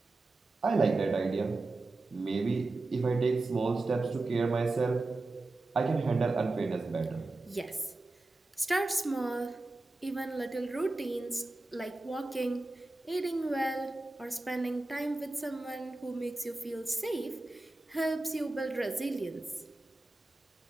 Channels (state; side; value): quieter; left; 3.1 dB